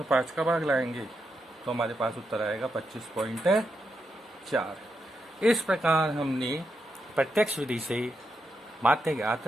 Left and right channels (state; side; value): normal; both; correlation 0.84